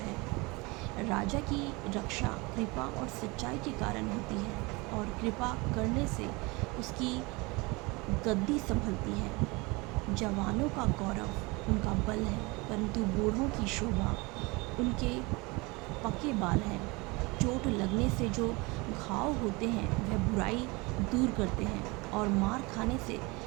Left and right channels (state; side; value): quieter; left; 25.6 dB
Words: राजा की रक्षा कृपा और सच्चाई के कारण होती है, और कृपा करने से उसकी गद्दी संभलती है। जवानों का गौरव उनका बल है, परंतु बूढ़ों की शोभा उनके पके बाल हैं। चोट लगने से जो घाव होते हैं वह बुराई दूर करते हैं और मार खाने से